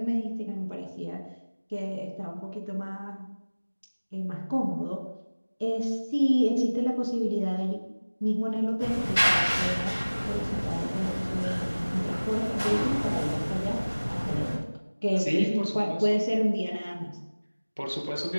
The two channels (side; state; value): both; inverted; correlation -1.00